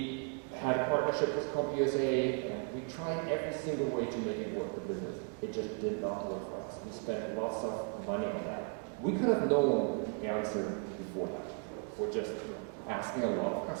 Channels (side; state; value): left; quieter; 37.3 dB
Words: had a partnership with CompUSA, and we tried every single way to make it work for business. It just did not work for us. We spent lots of money on that. We could have known the answer before that. We're just asking a lot of